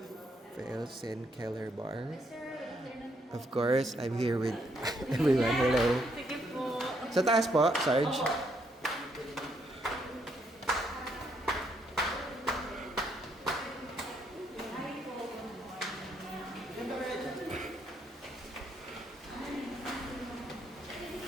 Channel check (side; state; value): both; normal; correlation 0.73